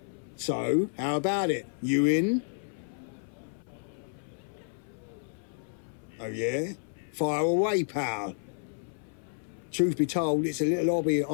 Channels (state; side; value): silent; right; 57 dB below the other